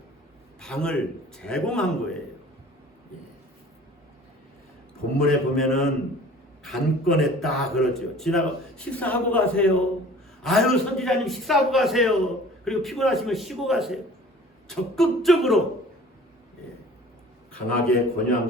방을 제공한 거예요. 본문에 보면은 간건했다 그러죠. 지나가 식사하고 가세요. 아유 선지자님 식사하고 가세요. 그리고 피곤하시면 쉬고 가세요. 적극적으로 강하게 권유한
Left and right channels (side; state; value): both; normal; correlation 0.47